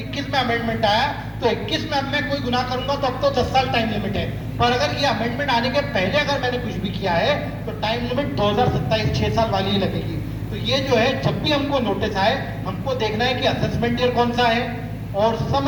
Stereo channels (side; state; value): both; identical; correlation 1.00